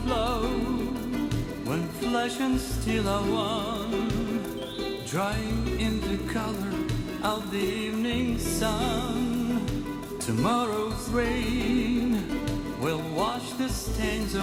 flow when flesh and steel are one, drying in the color of the evening sun, tomorrow's rain will wash the stains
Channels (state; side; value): identical; both; correlation 1.00